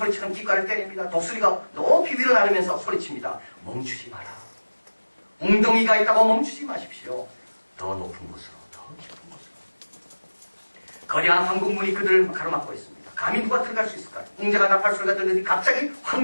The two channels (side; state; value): both; inverted; correlation -1.00